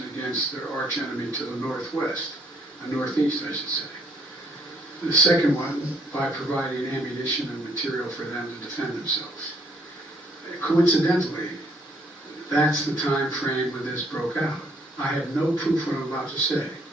against their arch enemy to the northwest, northeast, I should say. The second one, by providing ammunition and material for them to defend themselves. Coincidentally, that's the time frame when this broke out. I have no proof what I'm about to say,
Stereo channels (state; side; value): normal; both; correlation 0.66